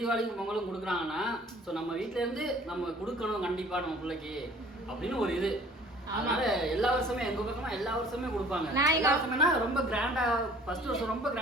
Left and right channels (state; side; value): normal; both; correlation 0.52